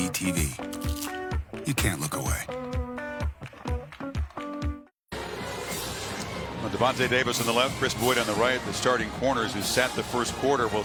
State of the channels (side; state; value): both; identical; correlation 1.00